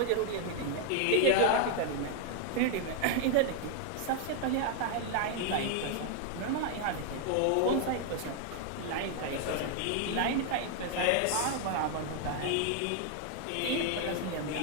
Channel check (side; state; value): both; different; correlation 0.00